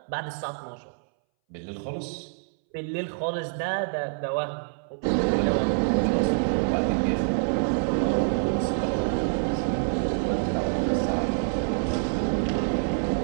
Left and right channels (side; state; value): left; silent; 61 dB below the other